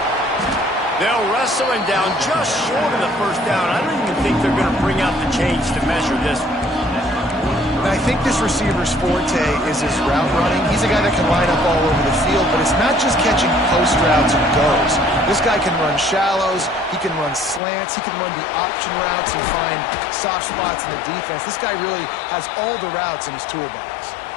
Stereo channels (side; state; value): right; drops out; at 17.6 s